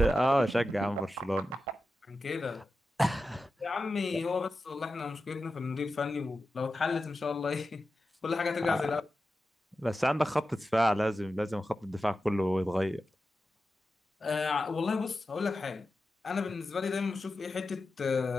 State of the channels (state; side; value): normal; both; correlation 0.92